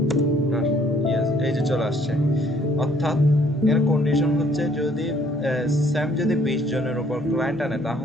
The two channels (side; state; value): both; normal; correlation 0.61